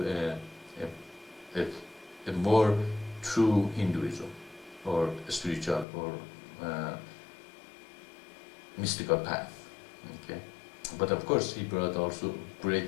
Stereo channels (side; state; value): right; drops out; at 5.9 s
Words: a more true Hinduism, or spiritual, or mystical path. Okay, but of course he brought also